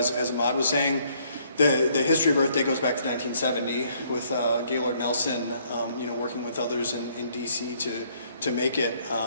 Ahmad was saying, the history of Earth Day goes back to 1970 with Gaylord Nelson, working with others in D.C. to make it,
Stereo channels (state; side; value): inverted; both; correlation -0.66